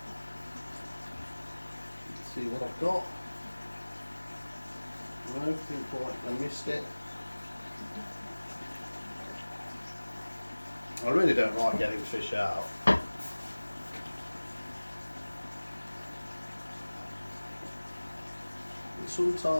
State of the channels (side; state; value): both; inverted; correlation -1.00